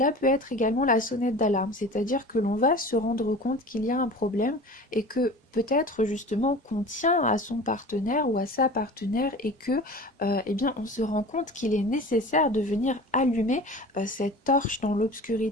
peut être également la sonnette d'alarme, c'est-à-dire que l'on va se rendre compte qu'il y a un problème et que peut-être justement qu'on tient à son partenaire ou à sa partenaire et que eh bien on se rend compte qu'il est nécessaire de venir allumer cette torche dans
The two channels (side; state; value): both; normal; correlation 0.38